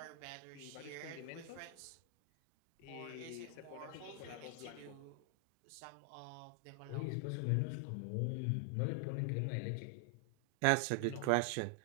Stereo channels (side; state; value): both; different; correlation 0.00